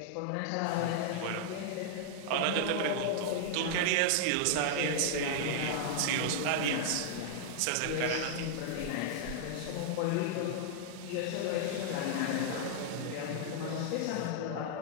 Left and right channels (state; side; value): different; both; correlation -0.01